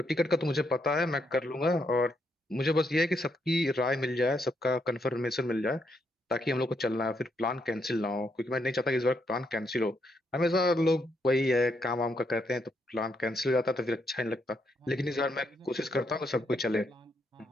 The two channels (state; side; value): normal; both; correlation 0.77